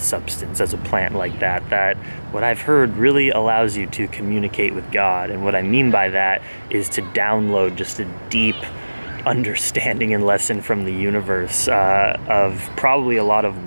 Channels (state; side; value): inverted; both; correlation -1.00